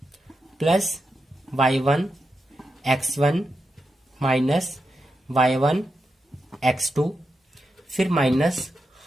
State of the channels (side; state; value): both; normal; correlation 0.87